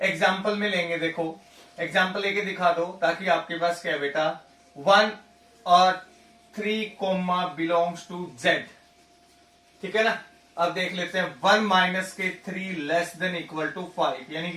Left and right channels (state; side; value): identical; both; correlation 1.00